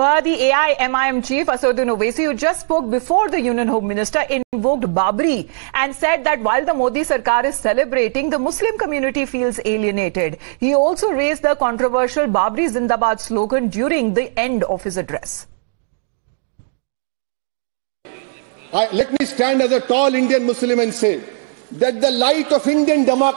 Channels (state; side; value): silent; left; digital silence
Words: the AIMIM chief Asaduddin Owaisi, who just spoke before the Union Home Minister, invoked Babri and said that while the Modi Sarkar is celebrating, the Muslim community feels alienated. He also raised the controversial Babri Zindabad slogan during the end of his address. Let me stand as a tall Indian Muslim and say that the light of Indian